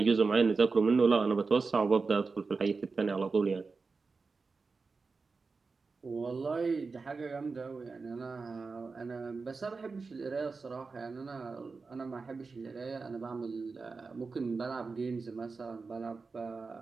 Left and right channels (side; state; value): left; quieter; 4.4 dB